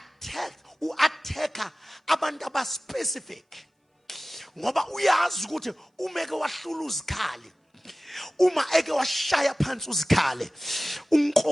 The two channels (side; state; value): both; normal; correlation 0.97